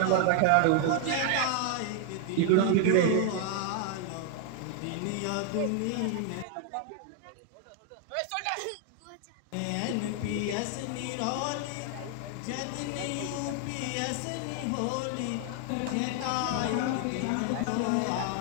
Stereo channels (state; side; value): different; both; correlation 0.00